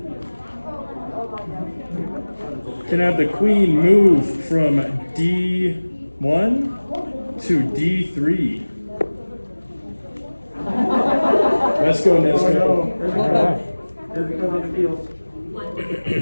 Can I have the queen move from D1 to D3? Let's go, Nesco.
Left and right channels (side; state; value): both; inverted; correlation -1.00